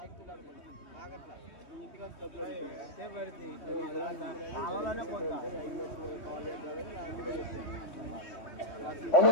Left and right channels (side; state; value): right; late; 3.2 ms